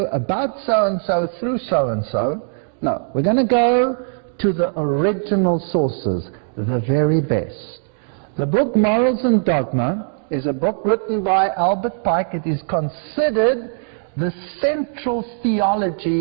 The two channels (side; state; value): left; silent; digital silence